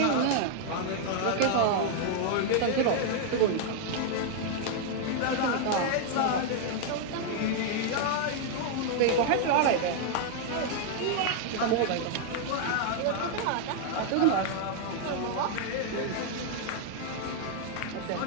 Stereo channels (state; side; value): different; both; correlation 0.00